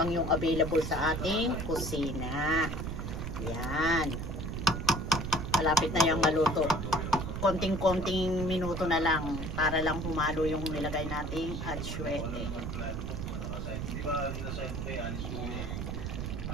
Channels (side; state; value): right; noise; rumble, 4 dB below the sound